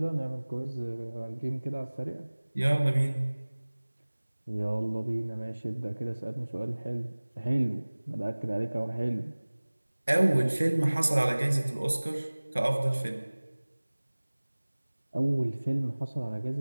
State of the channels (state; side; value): inverted; both; correlation -1.00